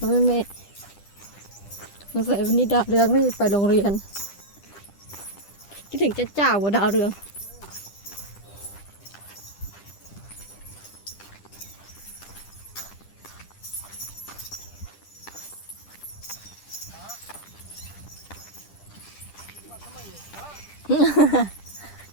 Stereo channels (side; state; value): right; late; 10 ms